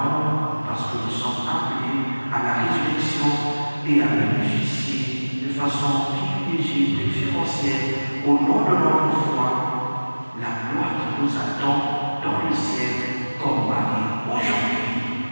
parce que nous sommes appelés à la résurrection et à bénéficier de façon privilégiée, préférentielle, au nom de notre foi, la gloire qui nous attend dans le ciel comme Marie.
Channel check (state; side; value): inverted; both; correlation -1.00